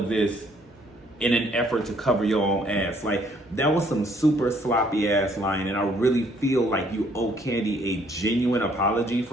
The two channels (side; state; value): both; normal; correlation 0.64